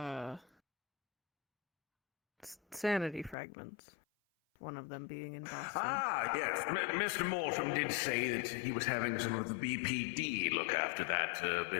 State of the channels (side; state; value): right; drops out; at 3.4 s